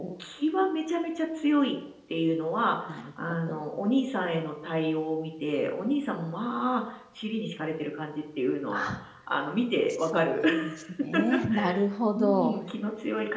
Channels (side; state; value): both; identical; correlation 1.00